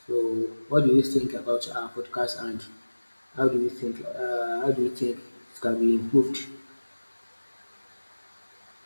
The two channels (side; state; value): both; inverted; correlation -1.00